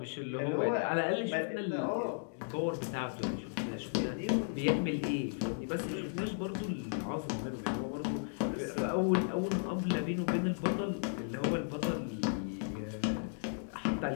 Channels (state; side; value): silent; right; digital silence